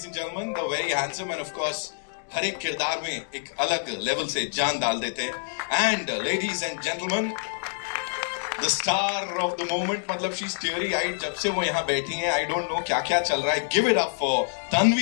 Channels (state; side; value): silent; right; digital silence